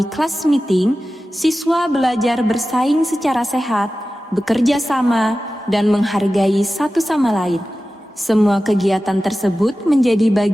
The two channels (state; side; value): normal; both; correlation 0.95